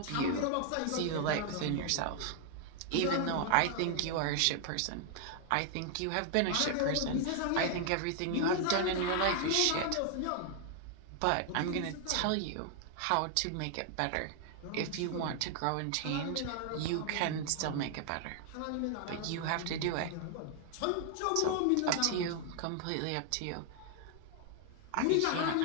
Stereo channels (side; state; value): both; different; correlation 0.00